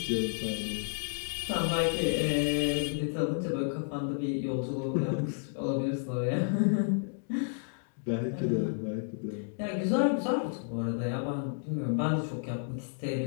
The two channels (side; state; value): right; silent; digital silence